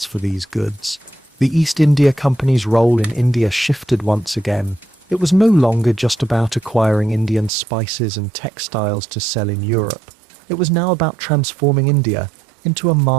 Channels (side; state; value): left; drops out; at 7.5 s